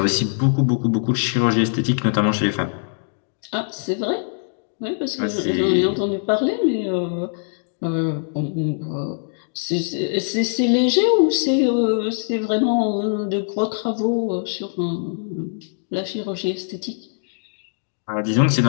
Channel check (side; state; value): right; silent; digital silence